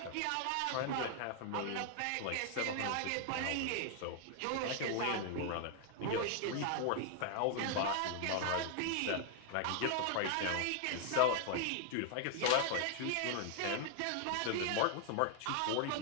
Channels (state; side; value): different; both; correlation 0.00